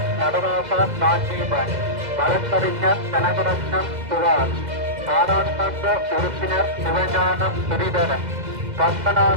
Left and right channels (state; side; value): late; left; 2.0 ms